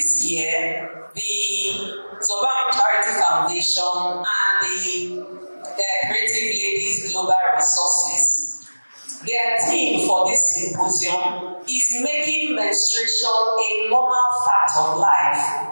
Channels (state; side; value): inverted; both; correlation -1.00